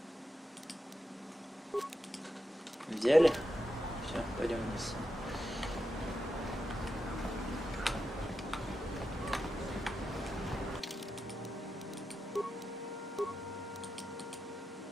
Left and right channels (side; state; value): both; normal; correlation 0.87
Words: Взяли? Все, пойдем вниз.